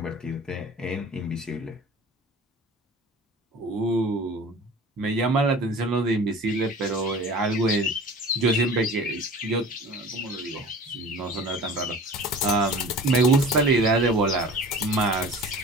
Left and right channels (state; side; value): normal; both; correlation 0.41